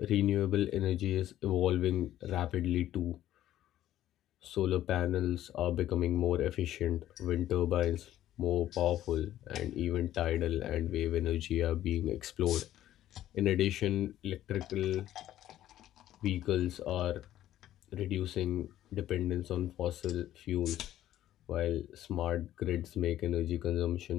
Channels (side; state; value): right; quieter; 13.0 dB